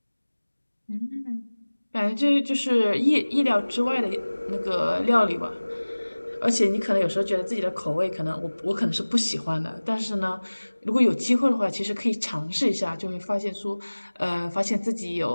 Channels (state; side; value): inverted; both; correlation -1.00